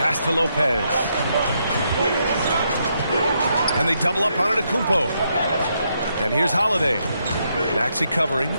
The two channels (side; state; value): both; inverted; correlation -0.78